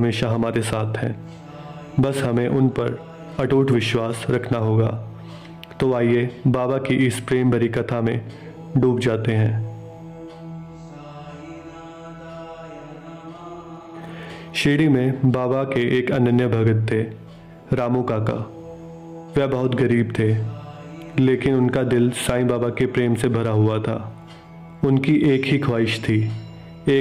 हमारे साथ हैं, बस हमें उन पर अटूट विश्वास रखना होगा। तो आइए बाबा की इस प्रेम भरी कथा में डूब जाते हैं। शिरडी में बाबा के एक अनन्य भगत थे, रामू काका। वह बहुत गरीब थे, लेकिन उनका दिल साईं बाबा के प्रेम से भरा हुआ था। उनकी एक ही ख्वाहिश थी,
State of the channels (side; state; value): both; identical; correlation 1.00